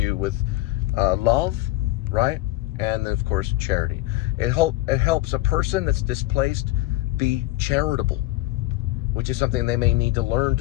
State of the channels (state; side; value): quieter; right; 17.3 dB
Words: with love, right? And then, of course, charity. It helps a person that's displaced be charitable, which is something they may need to learn